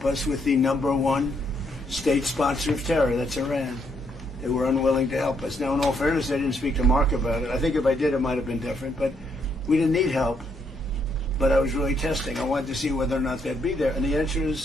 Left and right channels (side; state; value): both; normal; correlation 0.74